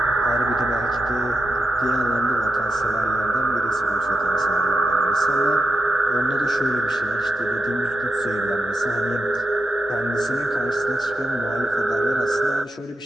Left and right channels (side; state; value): both; normal; correlation 0.87